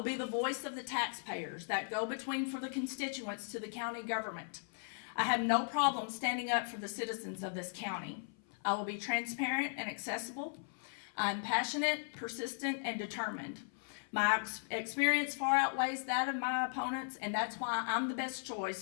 be the voice of the taxpayers, that go-between for the constituents to the county government. I have no problem standing up for the citizens of this county. I will be transparent and accessible. I'm passionate, persistent, and determined. My experience far outweighs that of my opponents, and that's why I'm the best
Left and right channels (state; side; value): silent; right; 53 dB below the other